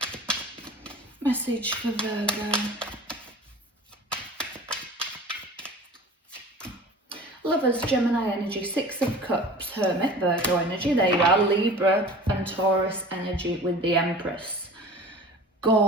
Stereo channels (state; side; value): normal; both; correlation 0.41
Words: Message for Virgo. Lovers, Gemini energy, Six of Cups, Hermit, Virgo energy. There you are, Libra and Taurus energy with the Empress.